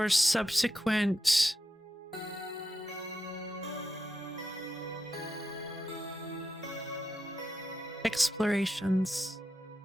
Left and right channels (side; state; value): both; normal; correlation 0.87